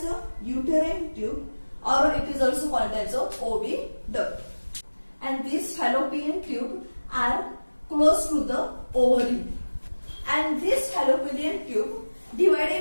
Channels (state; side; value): inverted; both; correlation -1.00